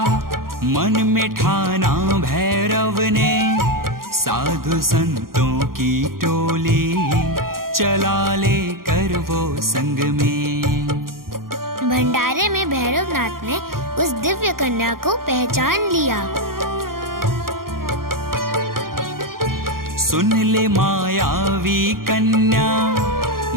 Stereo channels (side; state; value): left; late; 0.92 ms